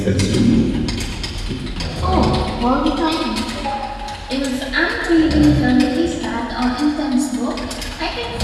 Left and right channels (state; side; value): identical; both; correlation 1.00